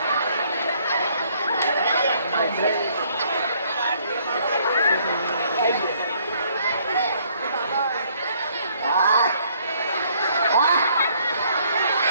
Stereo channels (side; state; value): both; inverted; correlation -0.65